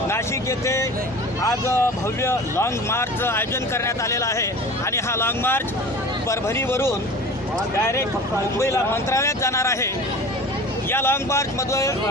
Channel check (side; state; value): both; normal; correlation 0.38